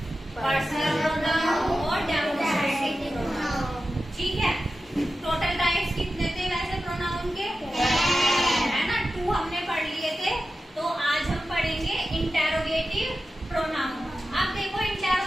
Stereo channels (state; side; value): normal; both; correlation 0.93